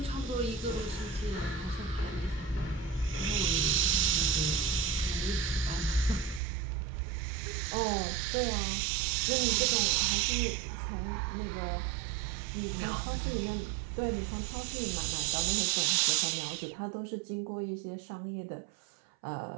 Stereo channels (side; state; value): left; drops out; at 6.4 s